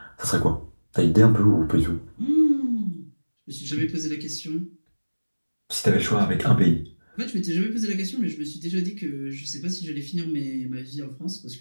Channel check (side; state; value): both; inverted; correlation -1.00